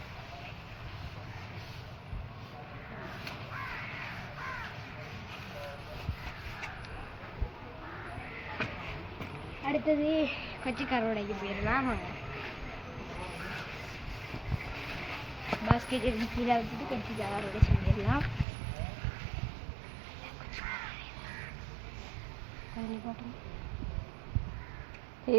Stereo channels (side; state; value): left; drops out; at 18.4 s